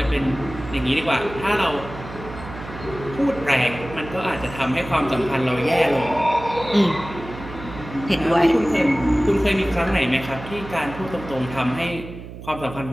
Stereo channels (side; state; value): right; noise; hum, 13 dB below the sound